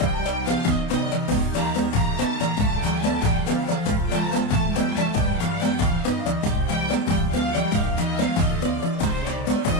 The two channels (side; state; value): right; late; 29 ms